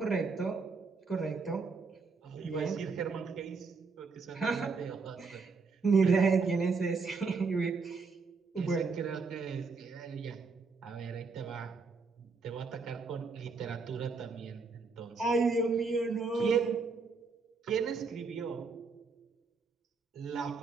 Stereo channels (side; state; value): left; quieter; 4.6 dB